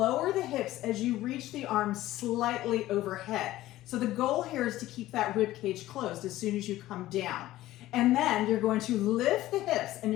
the hips as you reach the arms slightly overhead. So the goal here is to keep that rib cage closed as soon as you come down. And then you're going to lift the hips and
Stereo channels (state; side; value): quieter; right; 15.5 dB